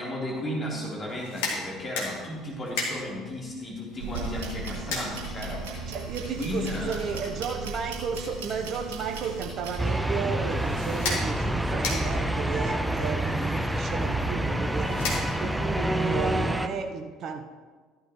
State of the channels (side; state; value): both; normal; correlation 0.70